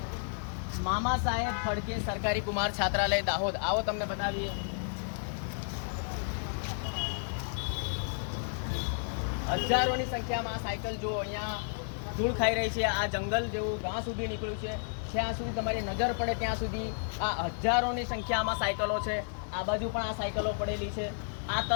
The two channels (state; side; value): silent; right; digital silence